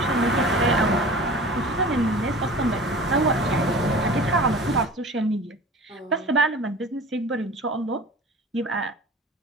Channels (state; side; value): normal; both; correlation 0.39